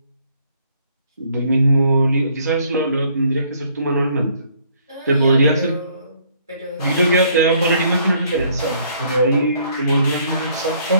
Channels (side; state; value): both; inverted; correlation -0.64